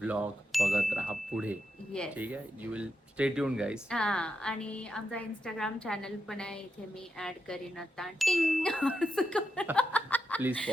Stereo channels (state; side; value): normal; both; correlation 0.85